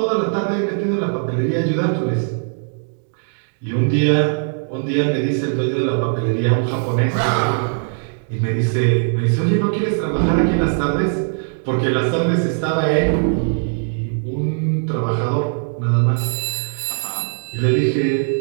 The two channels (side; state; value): left; silent; 66 dB below the other